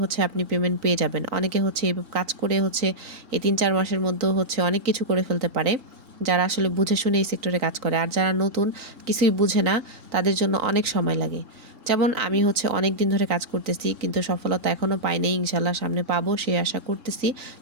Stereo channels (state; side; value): late; left; 3.9 ms